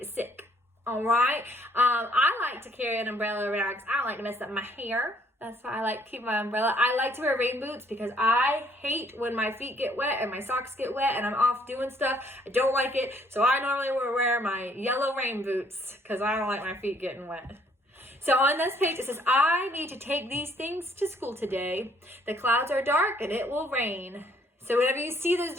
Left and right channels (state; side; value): normal; both; correlation 0.64